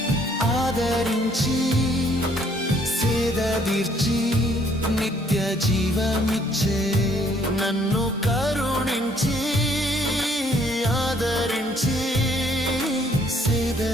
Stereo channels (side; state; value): both; normal; correlation 0.64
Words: ఆదరించి సేదదీర్చి నిత్య జీవమిచ్చే. నన్ను కరుణించి ఆదరించి